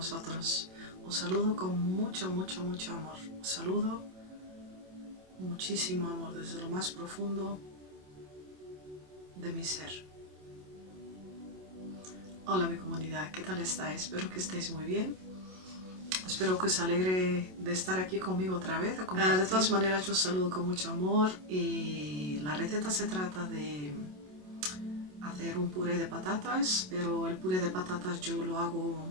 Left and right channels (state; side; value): late; left; 27 ms